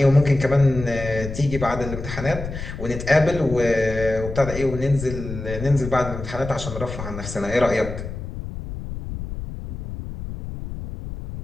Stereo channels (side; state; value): left; noise; rumble, 8 dB below the sound